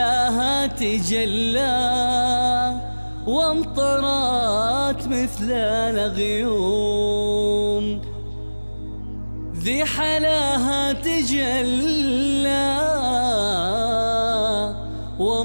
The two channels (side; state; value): both; inverted; correlation -1.00